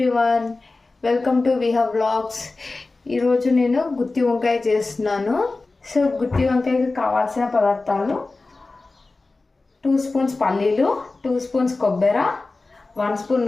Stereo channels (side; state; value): right; quieter; 3.5 dB